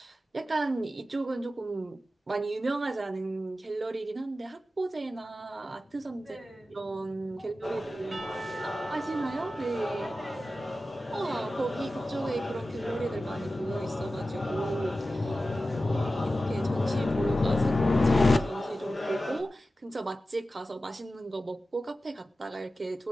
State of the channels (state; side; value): normal; both; correlation 0.94